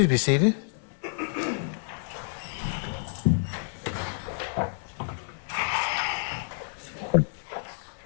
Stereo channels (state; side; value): silent; right; 59 dB below the other